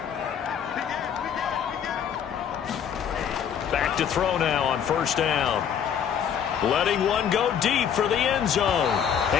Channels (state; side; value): quieter; right; 8.3 dB